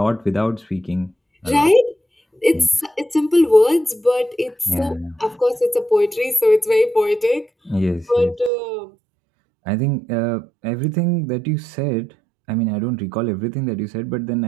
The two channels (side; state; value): left; drops out; at 8.5 s